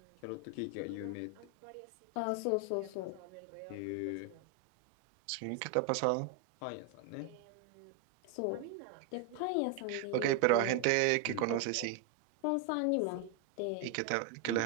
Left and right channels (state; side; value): different; both; correlation 0.01